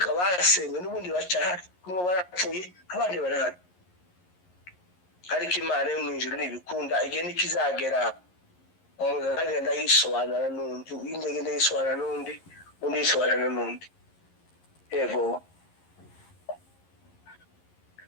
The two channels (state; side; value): late; right; 11 ms